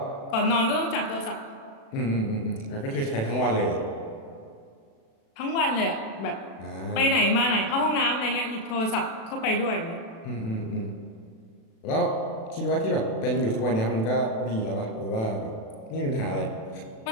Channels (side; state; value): right; late; 36 ms